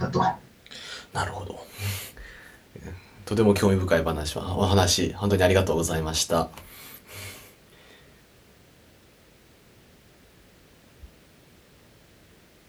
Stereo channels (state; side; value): identical; both; correlation 1.00